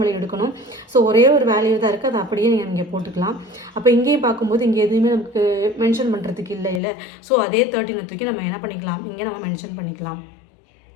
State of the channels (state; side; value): drops out; right; at 6.8 s